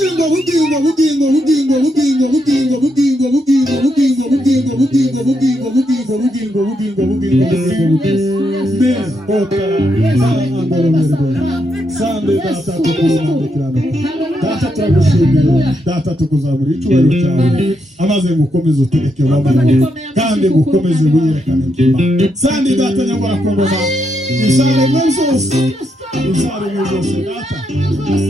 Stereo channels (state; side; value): normal; both; correlation 0.80